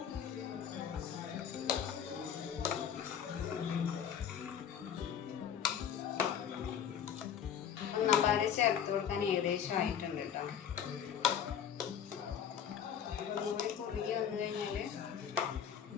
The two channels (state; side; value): quieter; right; 8.4 dB